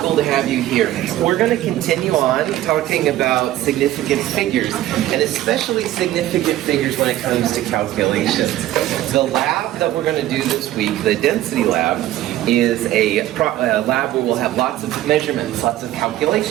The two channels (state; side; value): quieter; left; 14.1 dB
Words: to have you here. We're going to continue on talking about significant figures, and especially significant figures when it comes to calculations. The lab that we're going to do this week, the density lab, is a lab where we'll have lots of measurements, lots of